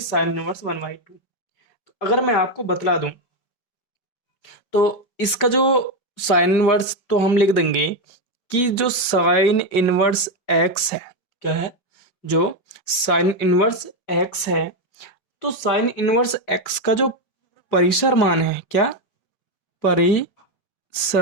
साइन इनवर्स 1/2। तो अगर मैं आपको बतला दूं तो इसका जो साइन इनवर्स तो हम लिख देंगे कि जो साइन इनवर्स एक्स है, क्या है, जो साइन इनवर्स एक्स है, तो साइन इनवर्स एक्स का जो परिसर मान है, क्या,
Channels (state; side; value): late; right; 5.4 ms